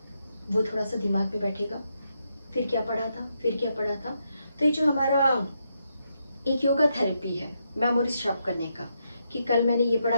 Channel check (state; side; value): inverted; both; correlation -0.81